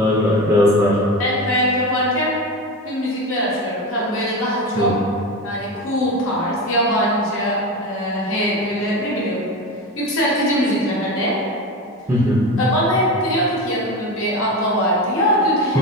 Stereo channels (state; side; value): normal; both; correlation 0.23